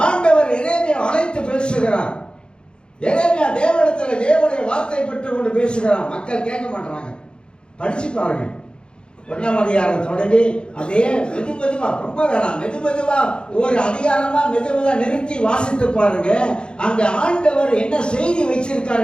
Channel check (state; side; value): late; right; 0.052 ms